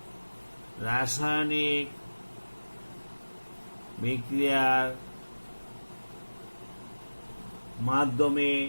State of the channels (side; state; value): both; inverted; correlation -1.00